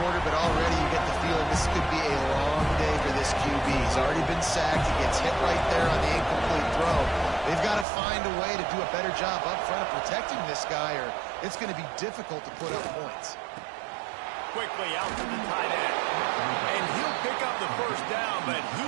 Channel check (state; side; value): drops out; left; at 7.9 s